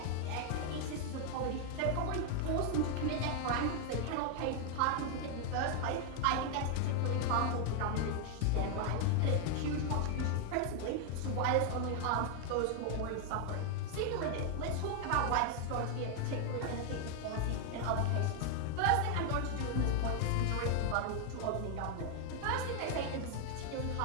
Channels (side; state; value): both; different; correlation 0.00